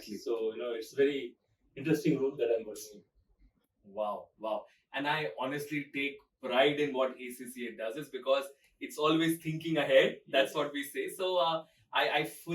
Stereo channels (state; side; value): identical; both; correlation 1.00